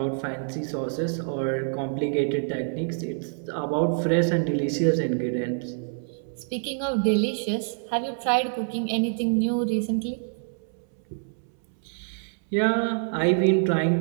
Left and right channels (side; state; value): left; silent; 61 dB below the other